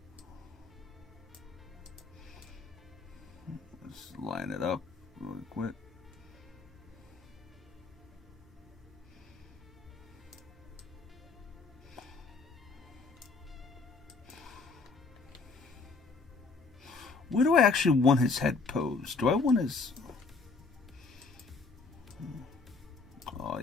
Let's line it up really quick. Where do I actually want his head posed? Do I want his... Oh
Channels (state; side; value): quieter; right; 4.3 dB